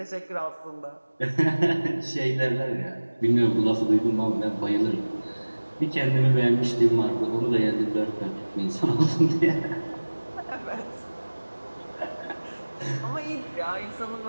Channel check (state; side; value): inverted; both; correlation -1.00